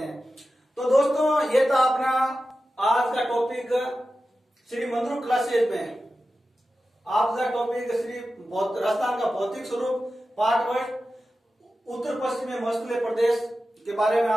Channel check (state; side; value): normal; both; correlation 0.93